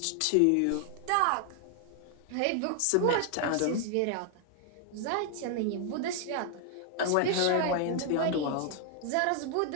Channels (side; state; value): both; different; correlation 0.00